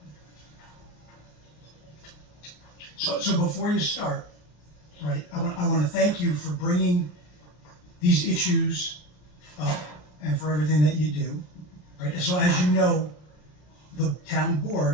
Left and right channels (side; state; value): right; late; 33 ms